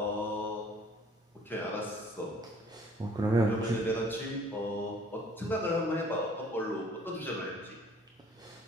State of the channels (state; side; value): normal; both; correlation 0.56